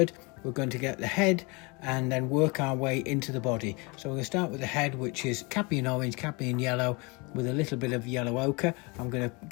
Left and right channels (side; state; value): right; quieter; 28.3 dB